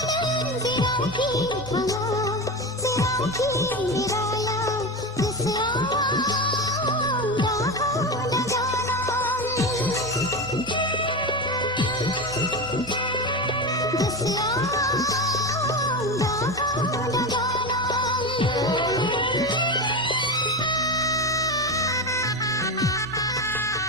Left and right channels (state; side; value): normal; both; correlation 0.21